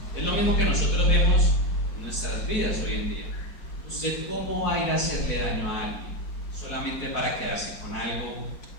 Es lo mismo que nosotros vemos en nuestras vidas hoy en día. ¿Usted cómo va a ir a hacerle daño a alguien solamente para quedarse con algo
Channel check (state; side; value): late; right; 4.9 ms